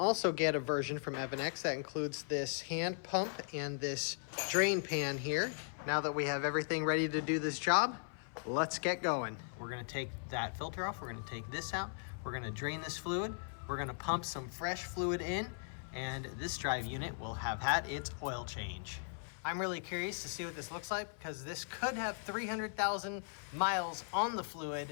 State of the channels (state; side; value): silent; right; 52 dB below the other